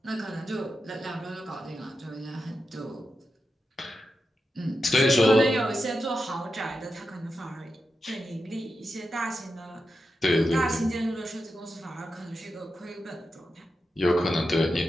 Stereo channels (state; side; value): normal; both; correlation 0.89